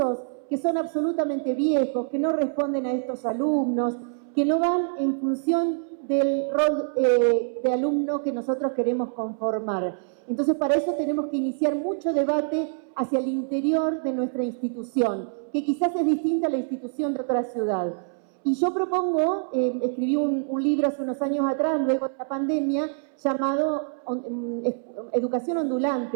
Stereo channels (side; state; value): left; silent; 61 dB below the other